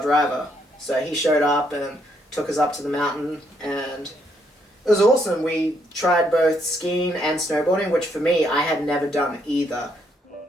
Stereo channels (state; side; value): normal; both; correlation 0.73